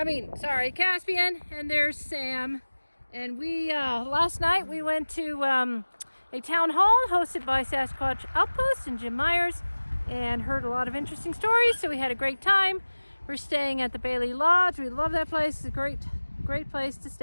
and there's Sam. And we, last night we went to a town hall hosted by Sasquatch Outpost and Jim Myers and heard a lot of interesting stories, so we had a great time. We're staying at the Bailey Lodge. We love that place. It's a great place to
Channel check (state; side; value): inverted; both; correlation -1.00